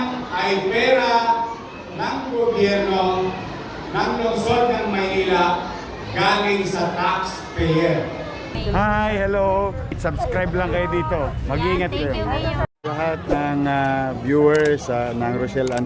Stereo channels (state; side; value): identical; both; correlation 1.00